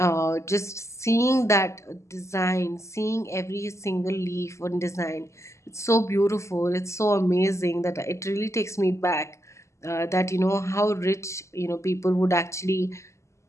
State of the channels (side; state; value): right; late; 0.14 ms